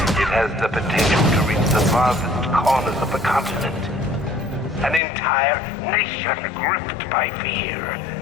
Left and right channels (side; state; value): right; drops out; at 5.0 s